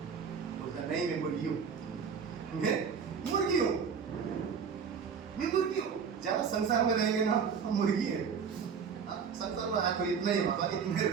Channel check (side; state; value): left; quieter; 6.4 dB